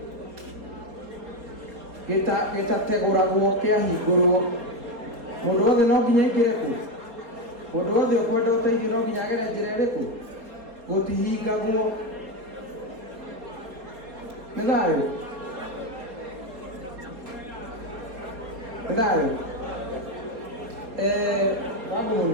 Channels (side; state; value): left; late; 4.2 ms